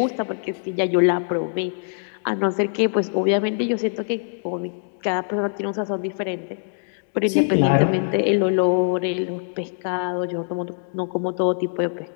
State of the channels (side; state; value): right; silent; digital silence